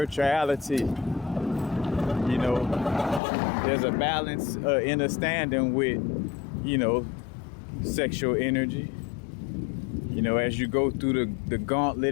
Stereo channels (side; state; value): right; drops out; at 3.2 s